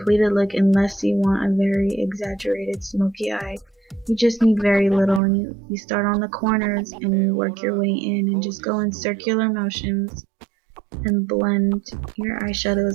look unless you want a very exaggerated smoky eye. You just need very little, and you start on the corners and you work your way in and just go in circular motions and blend your eyeshadow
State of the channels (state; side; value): drops out; left; at 5.2 s